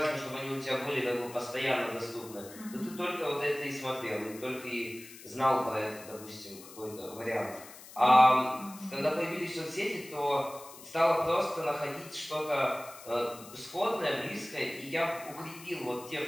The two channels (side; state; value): left; noise; hiss, 17 dB below the sound